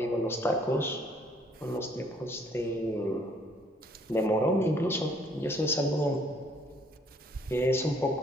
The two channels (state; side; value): normal; both; correlation 0.63